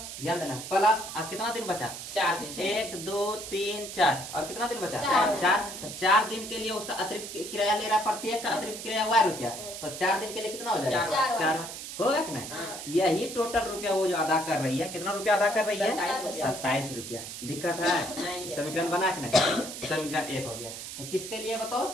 ध्यान देना, प्लस अब कितना दिन बचा, 4 दिन। 1 2 3 4, और कितना दिन बचा, 4। तो 4 दिन के लिए उसका अतिरिक्त किराया ले रहा है, प्रत्येक का अतिरिक्त किराया y रुपया। तो 4 दिन के लिए कितना हो जाएगा, 4 होगा कि नहीं। यही टोटल रुपया वो जो अदा कर रही है, कितना रुपया अदा कर रही है, 27 रुपया। दिक्कत है? समीकरण बना के नहीं, समीकरण 1 हो गया। किसके लिए बताओ,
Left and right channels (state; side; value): noise; right; hiss, 9 dB below the sound